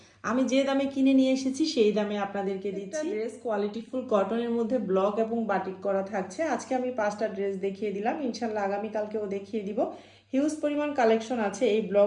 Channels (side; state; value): both; identical; correlation 1.00